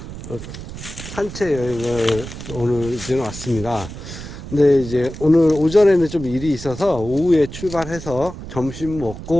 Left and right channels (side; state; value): right; noise; rumble, 11 dB below the sound